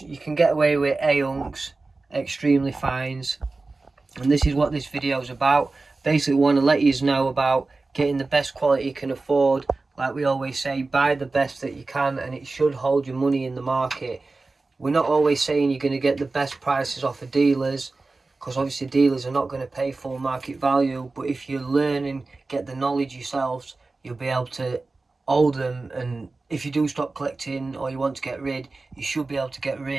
You can get away with A unks, extremely fines. And this is what this video is about. Basically want to let you know about getting the best quality you can afford. Like we always say, buy the best that you can, and it should hold your money in the market. We're not always saying you're going to get the best prices off of dealers, because obviously dealers are not going to pay full market value, but if you learn and get the knowledge yourselves, you'll be able to hold them, and if you do stop collecting or you want to get rid, you should be able to get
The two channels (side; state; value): left; quieter; 3.5 dB